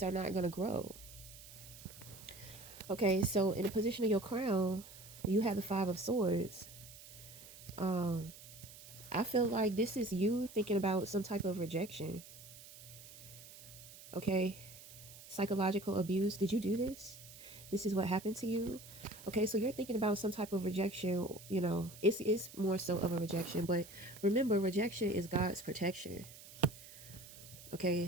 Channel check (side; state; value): right; noise; hiss, 17 dB below the sound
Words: are not going to grow. Okay, so in the position of your crown, you have the Five of Swords. um I feel like this is you thinking about some type of rejection. Okay, psychological abuse. Did you do this? This is what happened to you. Okay, so you're thinking about some type of rejection. It's more so of a rejection, but remember, rejection is God's protection. Okay,